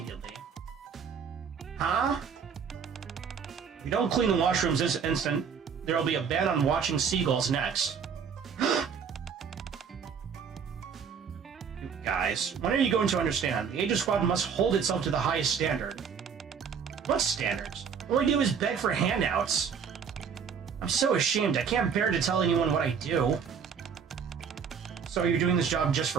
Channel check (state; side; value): quieter; left; 6.7 dB